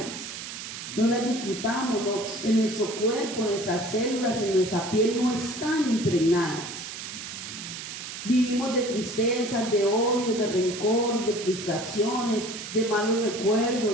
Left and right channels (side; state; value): right; noise; hiss, 9 dB below the sound